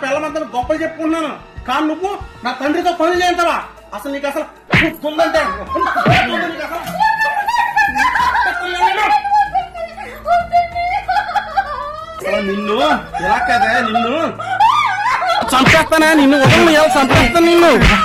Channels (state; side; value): identical; both; correlation 1.00